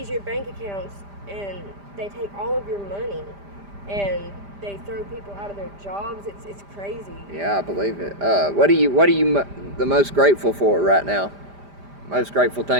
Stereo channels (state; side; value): late; left; 5.0 ms